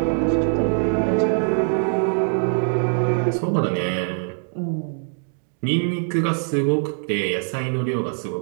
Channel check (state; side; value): silent; left; digital silence